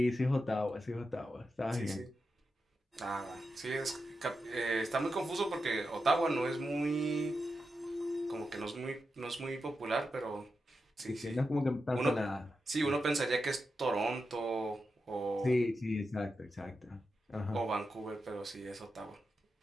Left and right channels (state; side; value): normal; both; correlation 0.88